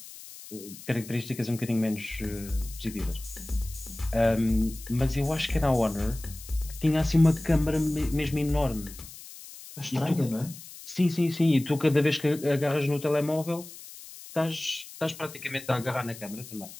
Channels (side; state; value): left; noise; hiss, 16 dB below the sound